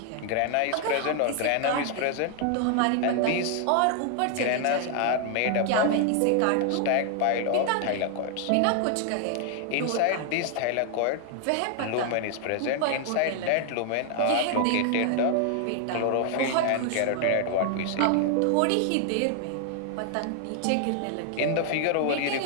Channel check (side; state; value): both; different; correlation 0.00